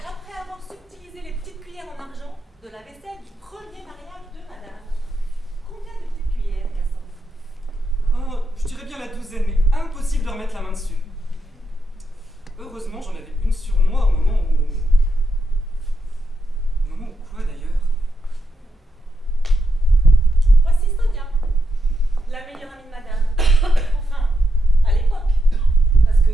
avoir subtilisé les petites cuillères en argent de la vaisselle du premier mariage de madame. Combien de petites cuillères, Cassandre? Oh, je dirais bien la douzaine, mais impossible de remettre la main dessus. Heureusement, j'en avais une sur moi au moment où... Au moment où quoi, d'ailleurs? Voici Sonia, la meilleure amie de madame. Enfin, à l'époque. Parce que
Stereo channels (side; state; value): both; normal; correlation 0.83